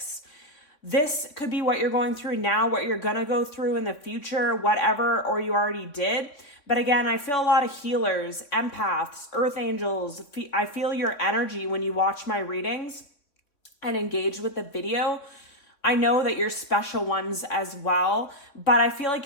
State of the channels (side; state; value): right; late; 3.6 ms